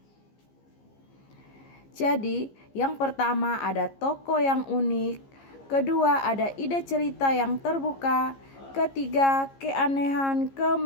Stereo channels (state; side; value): late; right; 15 ms